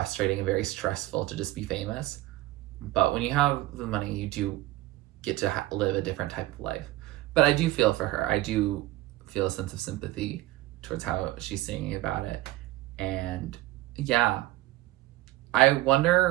and very stressful to just be famous. But when you have the money, you do get to live a different type of life. But I do feel for her. I do feel a sense of sympathy towards how she's singing about it. And yeah, I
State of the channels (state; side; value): quieter; left; 17.2 dB